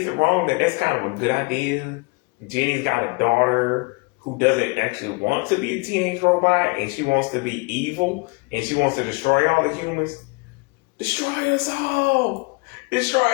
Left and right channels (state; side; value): quieter; right; 29.2 dB